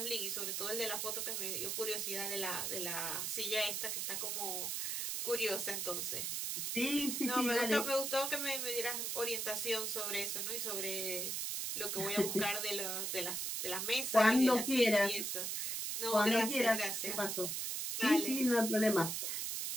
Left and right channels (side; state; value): right; noise; hiss, 1 dB below the sound